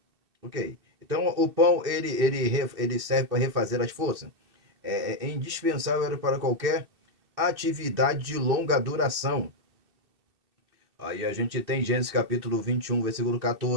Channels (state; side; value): late; left; 2.6 ms